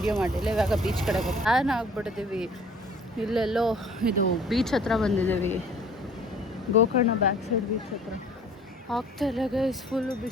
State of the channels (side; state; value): both; normal; correlation 0.52